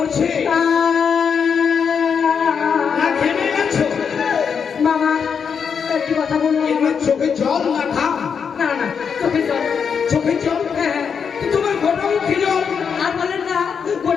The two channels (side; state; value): right; quieter; 6.6 dB